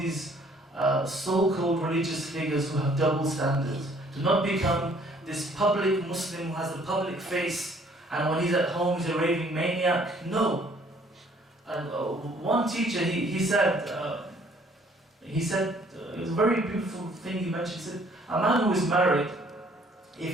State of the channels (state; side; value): normal; both; correlation 0.60